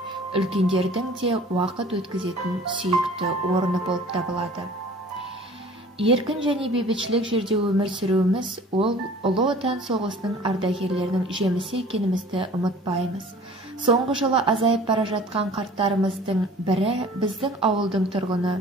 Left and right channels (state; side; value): normal; both; correlation 0.47